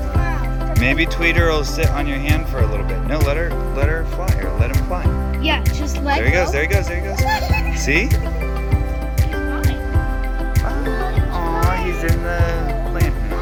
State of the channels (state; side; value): identical; both; correlation 1.00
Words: Maybe Tweeter will sit on your hand for a little bit. No, let her fly or let him fly. Yeah, just let There he goes. There he goes. There he goes. See? Aw, he's in the plant